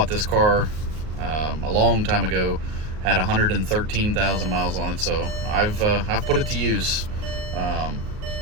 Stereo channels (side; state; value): left; late; 38 ms